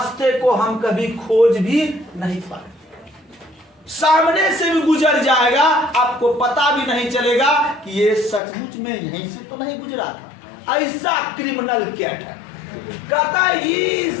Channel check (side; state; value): right; drops out; at 8.4 s